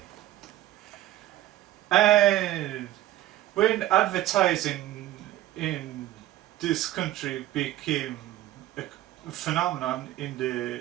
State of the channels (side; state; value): left; quieter; 14.3 dB